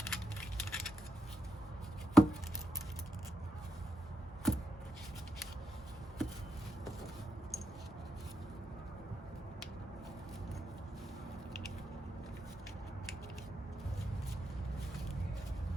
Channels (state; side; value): normal; both; correlation 0.84